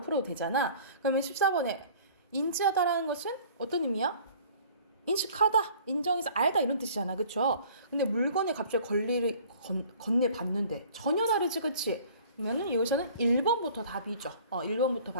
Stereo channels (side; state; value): both; inverted; correlation -0.50